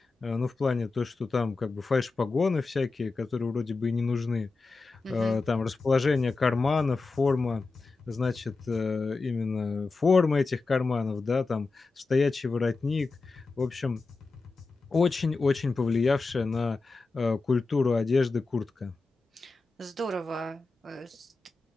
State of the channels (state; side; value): quieter; right; 3.9 dB